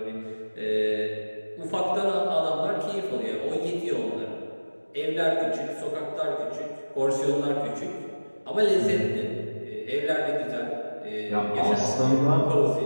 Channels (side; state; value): both; inverted; correlation -1.00